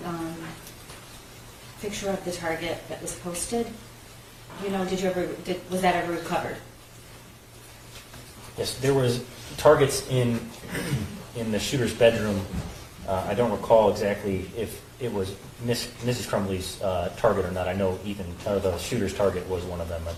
picture of the target that was posted. You know, was that ever recovered? Yes, there was targets in the shooter's bedroom. I don't recall exactly if it was Mrs. Crumbley's target or not. I know the shooter's target was one of them, I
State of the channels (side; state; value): both; identical; correlation 1.00